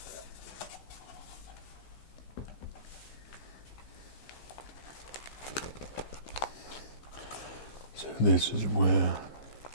So this is where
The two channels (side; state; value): right; late; 15 ms